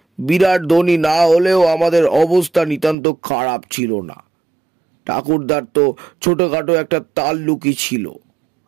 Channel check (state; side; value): drops out; left; at 3.0 s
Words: বিরাট ধনী না হলেও আমাদের অবস্থা নিতান্ত খারাপ ছিল না। ঠাকুরদার তো ছোটখাটো একটা তাল্লুকি ছিল।